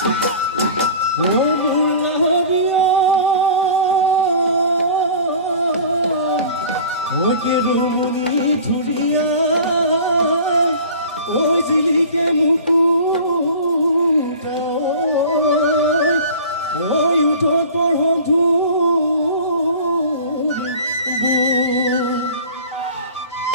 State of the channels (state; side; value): inverted; both; correlation -0.41